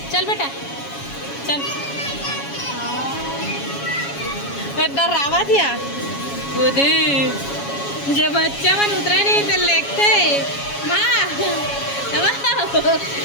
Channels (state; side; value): late; right; 7.2 ms